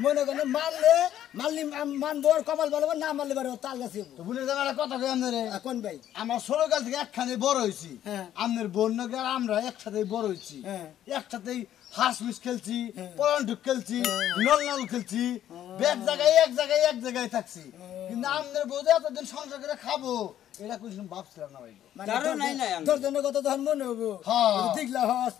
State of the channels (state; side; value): quieter; right; 11.4 dB